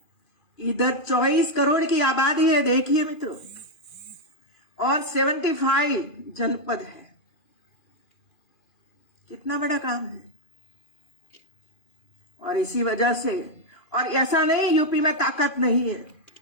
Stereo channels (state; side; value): late; right; 2.4 ms